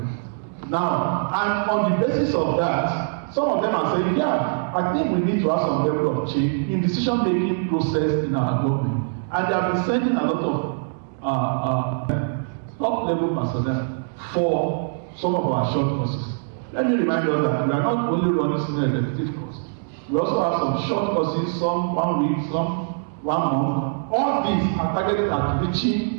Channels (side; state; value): left; silent; digital silence